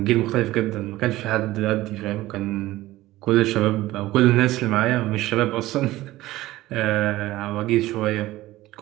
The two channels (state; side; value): quieter; left; 16.8 dB